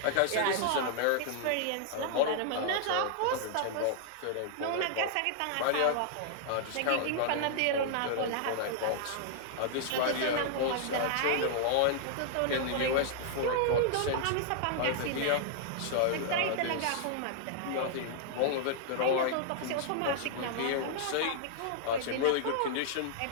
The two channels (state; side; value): different; both; correlation -0.01